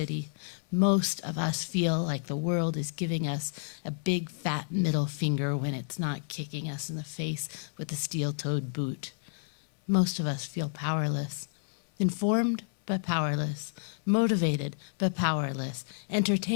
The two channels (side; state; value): right; silent; 58 dB below the other